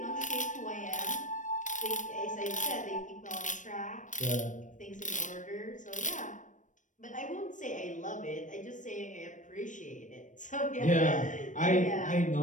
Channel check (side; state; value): right; late; 0.37 ms